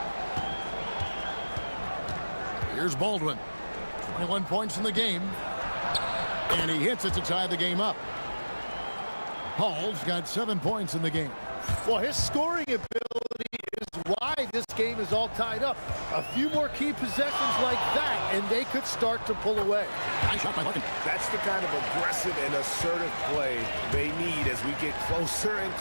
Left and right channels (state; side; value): inverted; both; correlation -1.00